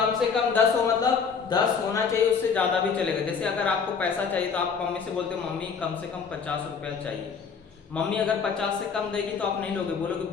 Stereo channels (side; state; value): right; quieter; 6.0 dB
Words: से कम 10 हो, मतलब 10 होना चाहिए, उससे ज्यादा भी चलेगा। जैसे अगर आपको पैसा चाहिए तो आप मम्मी से बोलते हो मम्मी कम से कम 50 रुपया चाहिए। मम्मी अगर 50 से कम देगी तो आप नहीं लोगे, बोलोगे